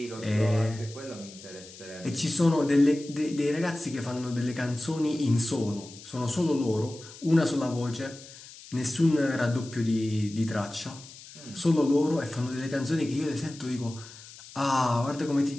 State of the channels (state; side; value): noise; left; hiss, 18 dB below the sound